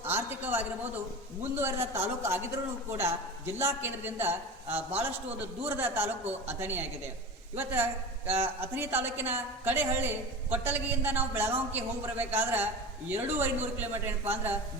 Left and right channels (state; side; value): normal; both; correlation 0.30